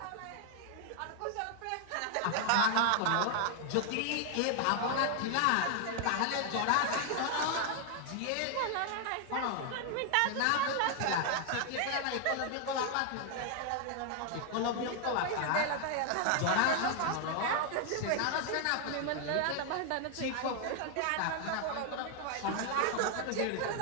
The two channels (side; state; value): both; different; correlation 0.00